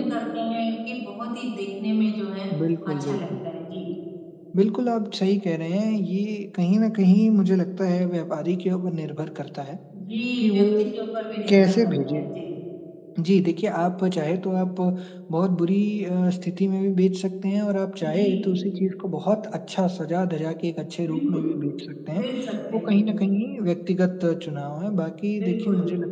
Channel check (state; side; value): identical; both; correlation 1.00